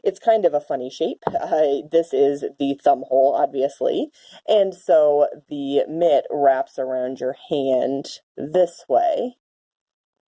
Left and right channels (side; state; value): both; identical; correlation 1.00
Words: it's kind of a funny shape. This is the thumb hole, obviously, and so the mitt wraps around your hand this way,